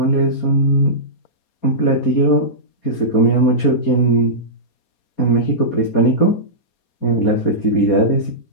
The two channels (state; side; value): late; right; 4.2 ms